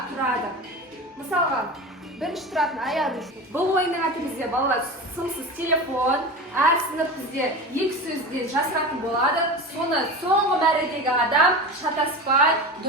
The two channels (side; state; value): both; normal; correlation 0.28